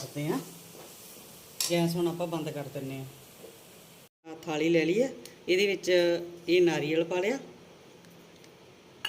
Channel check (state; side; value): identical; both; correlation 1.00